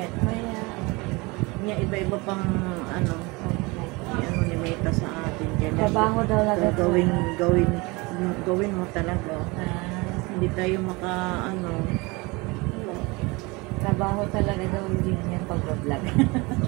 Maya. Niya iba-iba pang ano. Ano ni Meta sa atin dyan. Trabaho daw lang. Gawin mo talaga. Hindi tayo ano. Trabaho talaga daw din yan pag-vlog.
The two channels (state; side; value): quieter; left; 25.3 dB